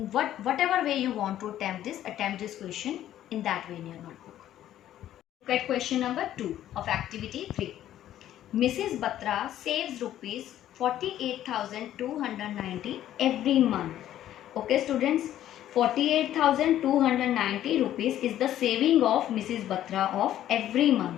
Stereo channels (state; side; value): quieter; right; 12.2 dB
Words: whatever way you want to attempt this question in that way in your notebook. Look at question number 2 of activity 3. Mrs. Batra saves rupees 48,290 every month. Okay students, 48,290 rupees is the saving of Mrs. Batra of every